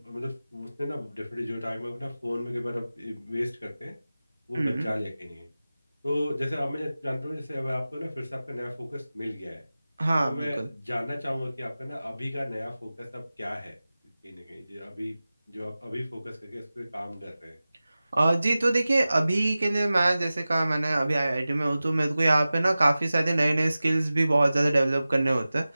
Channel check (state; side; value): inverted; both; correlation -0.96